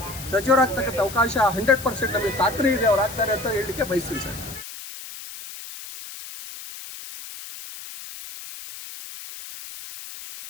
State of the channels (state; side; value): noise; left; hiss, 13 dB below the sound